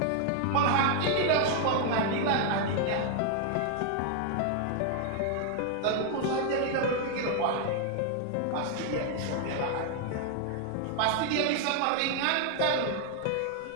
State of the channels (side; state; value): both; different; correlation 0.00